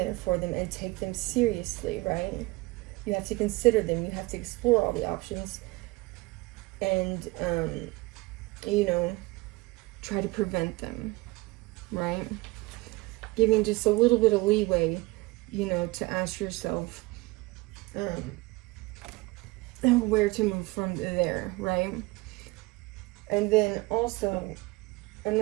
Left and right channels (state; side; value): quieter; left; 22.4 dB